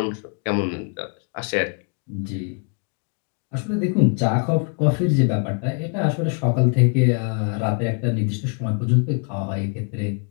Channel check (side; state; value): right; quieter; 39.2 dB